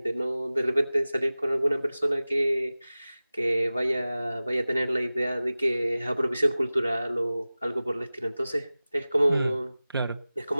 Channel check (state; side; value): inverted; both; correlation -0.97